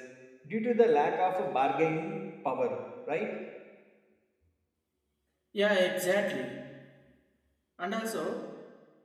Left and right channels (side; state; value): both; identical; correlation 1.00